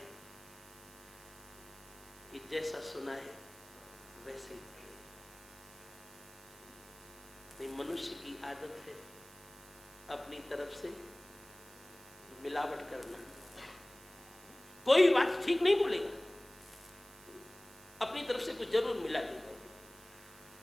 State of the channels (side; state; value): right; noise; hiss, 20 dB below the sound